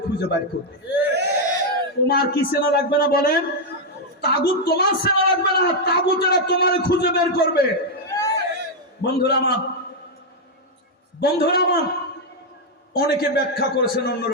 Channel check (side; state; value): both; normal; correlation -0.01